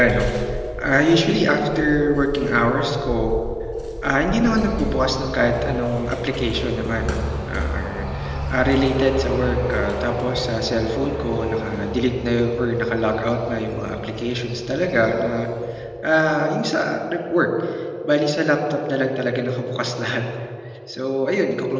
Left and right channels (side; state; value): both; identical; correlation 1.00